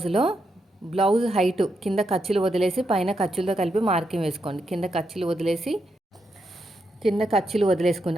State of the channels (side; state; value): both; normal; correlation 0.82